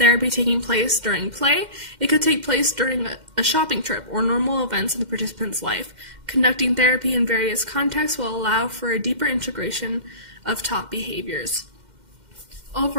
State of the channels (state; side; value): late; left; 2.1 ms